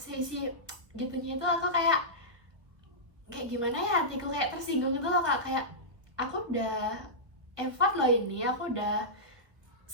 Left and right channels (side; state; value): left; late; 1.3 ms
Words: gitunya itu, aku kayak gimana ya, hatiku kayak tersinggung gitu loh kak. Kayak aku udah effort loh ini, aku udah